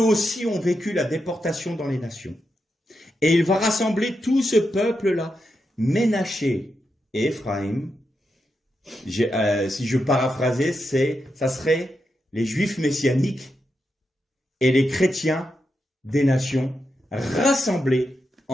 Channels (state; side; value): normal; both; correlation 0.86